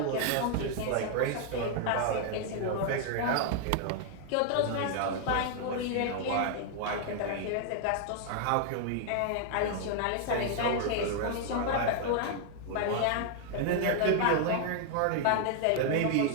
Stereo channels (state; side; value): different; both; correlation 0.00